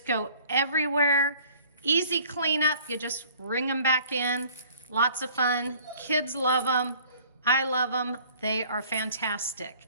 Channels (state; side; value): inverted; both; correlation -0.53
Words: go everywhere. Easy cleanup, you just ring them back in. Lots of fun. Kids love them. I love them. They are fantastic.